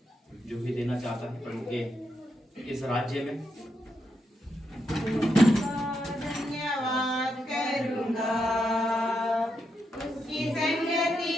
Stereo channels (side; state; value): both; normal; correlation 0.82